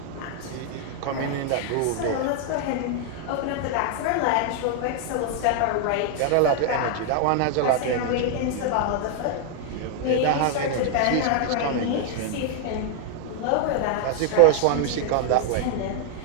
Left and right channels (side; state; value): both; different; correlation 0.00